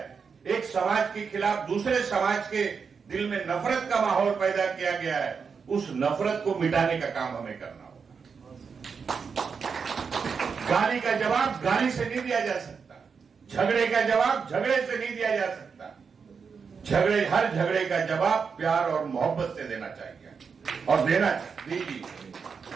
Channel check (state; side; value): quieter; left; 5.8 dB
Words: एक समाज के खिलाफ दूसरे समाज के दिल में नफरत का माहौल पैदा किया गया है, उस नफरत को मिटाने का काम हमें करना होगा। गाली का जवाब गाली से नहीं दिया जा सकता, झगड़े का जवाब झगड़े से नहीं दिया जा सकता। हर झगड़े का जवाब प्यार और मोहब्बत से देना चाहिए और देना दीजिए।